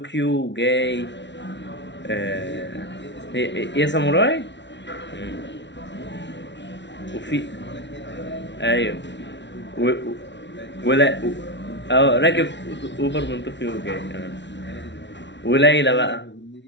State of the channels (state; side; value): late; right; 0.52 ms